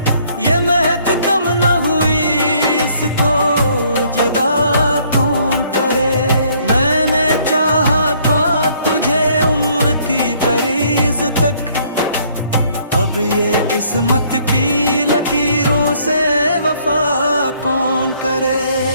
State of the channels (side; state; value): both; inverted; correlation -0.63